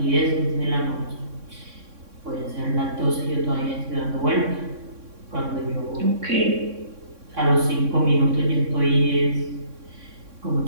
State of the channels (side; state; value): left; late; 3.6 ms